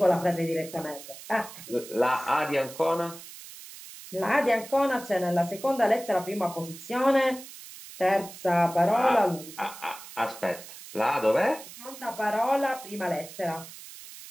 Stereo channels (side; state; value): right; noise; hiss, 15 dB below the sound